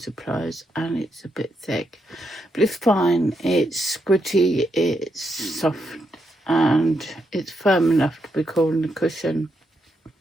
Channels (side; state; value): both; normal; correlation 0.81